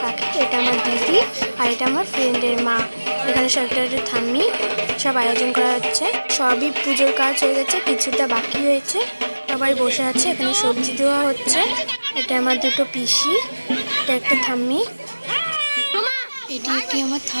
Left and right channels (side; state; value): both; inverted; correlation -1.00